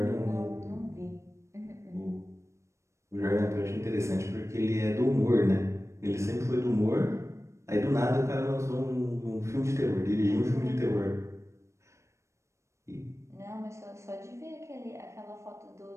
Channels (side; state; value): left; late; 0.14 ms